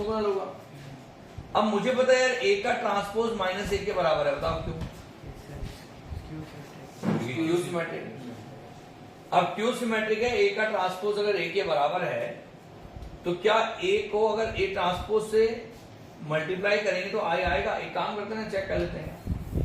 होगा। अब मुझे पता है यार ए का ट्रांसपोज माइनस ए के बराबर है, बताओ क्यों? Q symmetric. अब क्यू सिमेट्रिक है, ए का ट्रांसपोज अगर ए के बराबर है तो क्या ए को अगर ए ट्रांसपोज से मल्टीप्लाई करेंगे तो आई आएगा? एक काम करते हैं, चेक कर लेते हैं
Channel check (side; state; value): both; identical; correlation 1.00